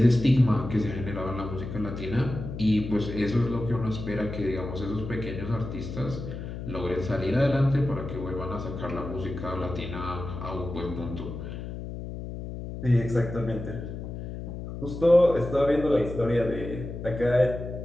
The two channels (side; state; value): left; noise; hum, 8 dB below the sound